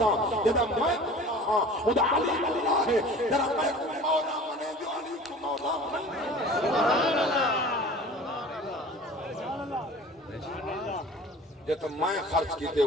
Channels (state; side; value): normal; both; correlation 0.42